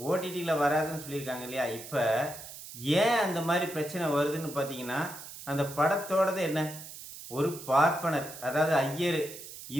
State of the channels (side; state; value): right; noise; hiss, 13 dB below the sound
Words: ஓடிடியில் வராதுன்னு சொல்லியிருக்காங்க இல்லையா? இப்போ ஏன் அந்த மாதிரி பிரச்சனை வருதுன்னு பார்த்தீங்கன்னா, அந்த படத்தோடது என்ன, ஒரு பார்ப்பனர், அதாவது ஐயர்,